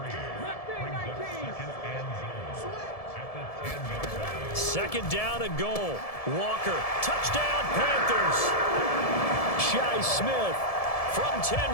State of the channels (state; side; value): late; right; 1.7 ms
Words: Second down and goal. Walker, touchdown Panthers. Shi Smith from